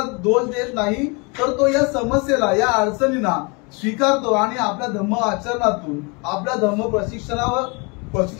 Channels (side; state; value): right; quieter; 30.2 dB